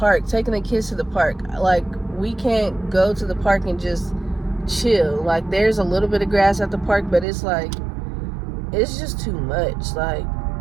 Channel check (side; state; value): left; drops out; at 7.2 s